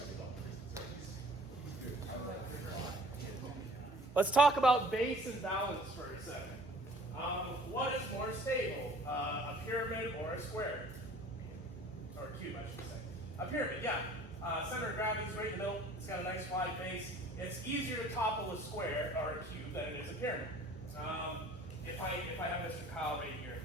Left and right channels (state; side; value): normal; both; correlation 0.50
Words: Let's talk about base and balance for a second. What is more stable, a pyramid or a square? Or a cube, I should say. A pyramid, yeah. Center of gravity is right in the middle. It's got a nice wide base. It's easier to topple a square or a cube than it is a pyramid. If I have Mr. Kyle right here.